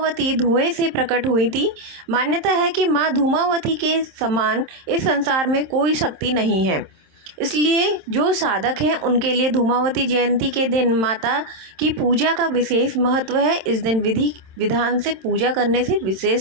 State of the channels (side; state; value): left; late; 27 ms